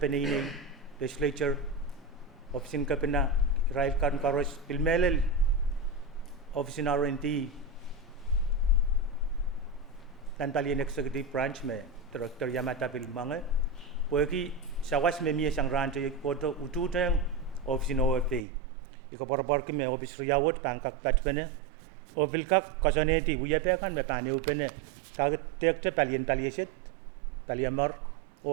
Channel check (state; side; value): drops out; left; at 18.4 s